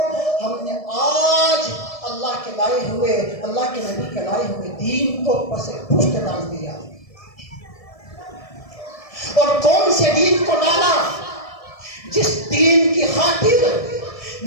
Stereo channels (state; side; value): late; right; 1.7 ms